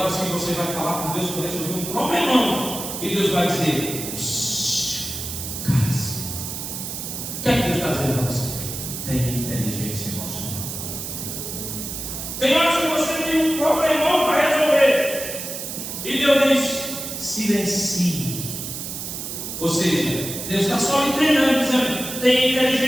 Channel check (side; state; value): right; noise; hiss, 6 dB below the sound